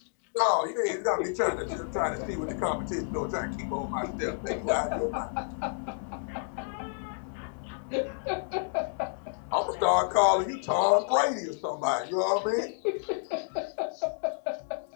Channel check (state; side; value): silent; right; digital silence